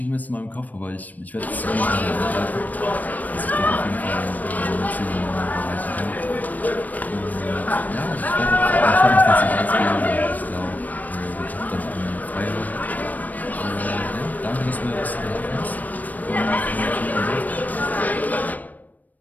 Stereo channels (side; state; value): right; late; 0.080 ms